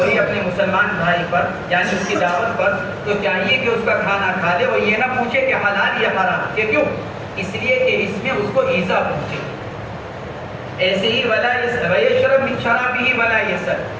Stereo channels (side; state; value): both; identical; correlation 1.00